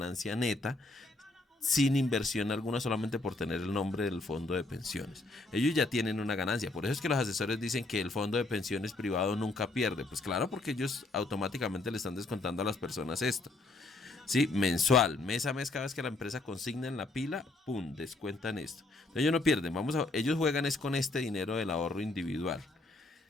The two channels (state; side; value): quieter; right; 3.0 dB